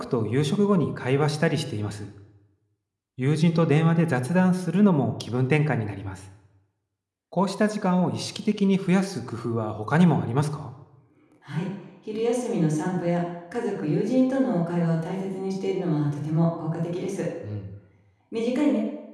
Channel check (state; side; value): identical; both; correlation 1.00